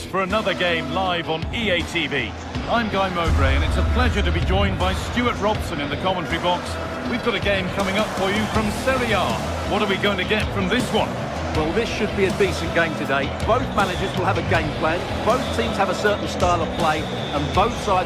for another game live on EA TV. I'm Guy Mowbray and it's a pleasure to be joined by Stuart Robson in the commentary box. We've got a game coming up for you from Serie A. What are we going to get from this one? Well, this should be a decent game today. Both managers will have a game plan. Both teams have a certain style of play and both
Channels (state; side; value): identical; both; correlation 1.00